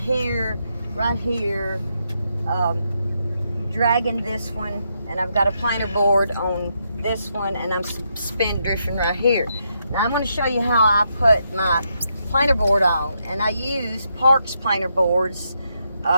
dragging this one, and I've got a planer board on this one, and I'm suspend drifting right here. Now I'm going to show you how I put my planer board on, and I use Parks planer boards.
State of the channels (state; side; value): inverted; both; correlation -0.80